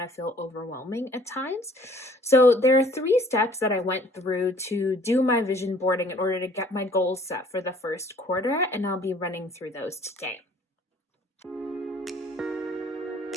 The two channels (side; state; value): both; normal; correlation 0.56